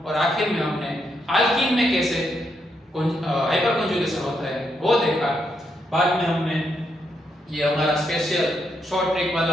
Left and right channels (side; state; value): both; normal; correlation 0.79